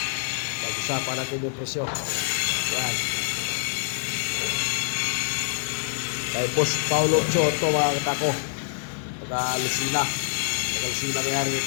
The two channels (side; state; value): right; silent; digital silence